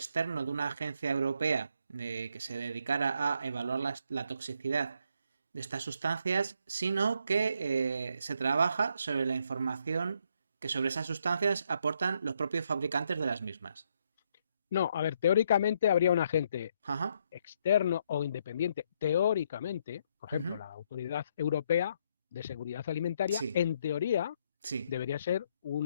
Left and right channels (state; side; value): inverted; both; correlation -0.73